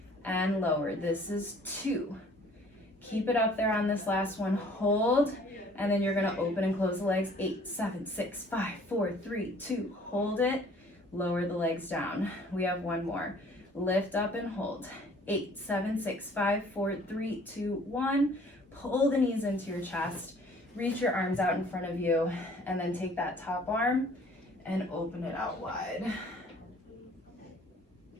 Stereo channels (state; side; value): normal; both; correlation 0.55